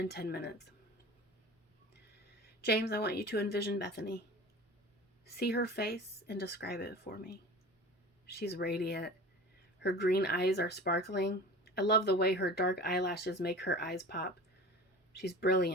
10 minutes. James, I want you to envision Bethany. See her face and describe it for me. She's radiant. Her green eyes are sparkling. I love the way her dark eyelashes make her eyes pop. She's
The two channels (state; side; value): normal; both; correlation 0.37